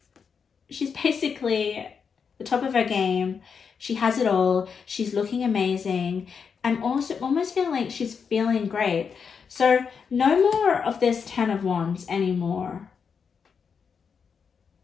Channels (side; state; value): right; quieter; 6.2 dB